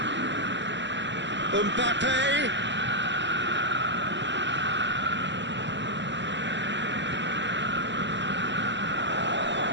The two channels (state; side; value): late; left; 0.53 ms